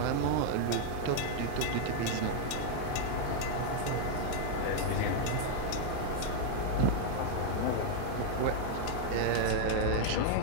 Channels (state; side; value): different; both; correlation 0.00